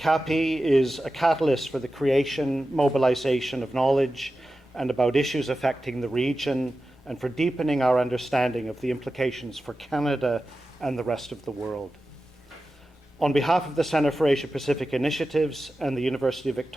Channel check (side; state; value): left; noise; rumble, 29 dB below the sound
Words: is a catalyst for the creation, mobilization of knowledge and about issues affecting the region, and for deepening our understanding of the implications for Canada and the rest of the world. On behalf of the Centre for Asia Pacific Initiatives and the University of